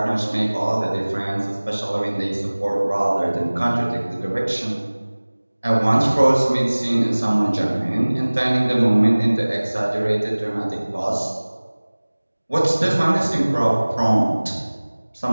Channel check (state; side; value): inverted; both; correlation -1.00